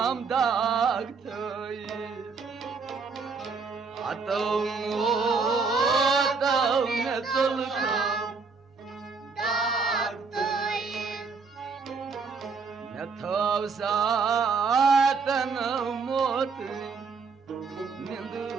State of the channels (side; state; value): left; quieter; 4.9 dB